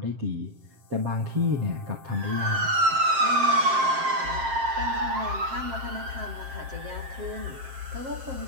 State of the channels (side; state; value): left; late; 7.5 ms